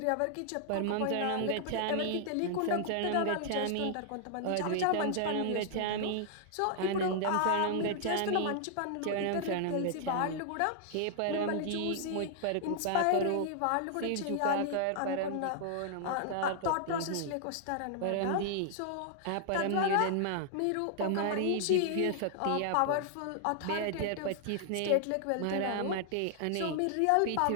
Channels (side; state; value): both; different; correlation -0.01